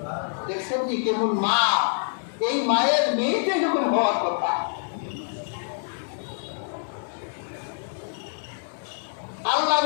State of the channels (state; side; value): silent; right; digital silence